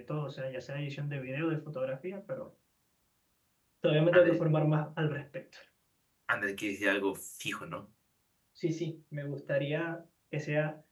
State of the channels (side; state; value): both; identical; correlation 1.00